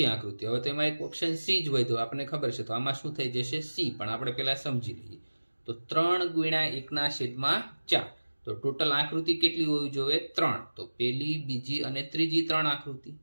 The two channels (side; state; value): both; inverted; correlation -1.00